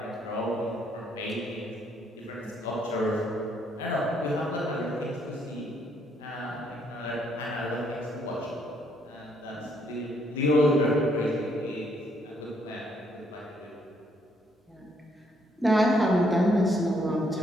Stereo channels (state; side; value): normal; both; correlation 0.71